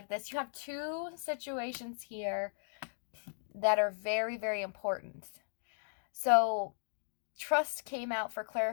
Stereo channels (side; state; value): right; silent; digital silence